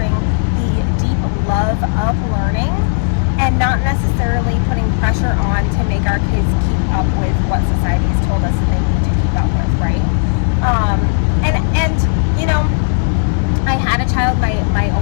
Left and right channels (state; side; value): silent; right; digital silence